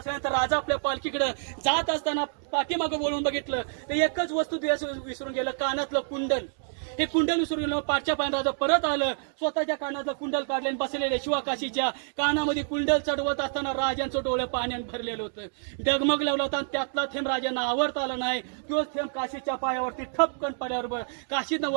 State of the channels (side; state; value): left; silent; digital silence